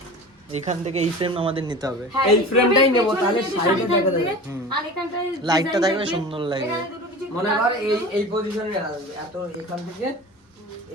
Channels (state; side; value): normal; both; correlation 0.36